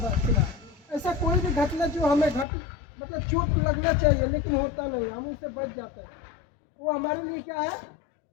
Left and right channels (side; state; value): right; drops out; at 2.5 s